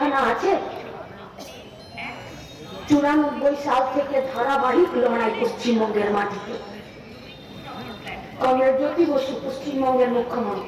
আছে। 94 সাল থেকে ধারাবাহিক লড়াই পশ্চিমবঙ্গের মাটিতে। কমরেড জ্যোতি বসু পশ্চিমবঙ্গের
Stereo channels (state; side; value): identical; both; correlation 1.00